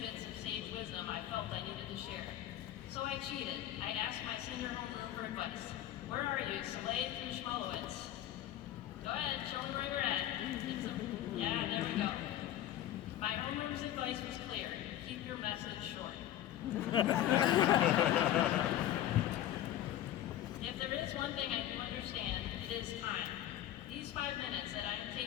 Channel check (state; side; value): quieter; right; 12.4 dB